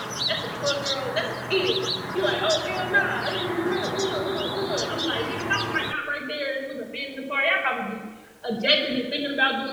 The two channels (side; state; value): both; identical; correlation 1.00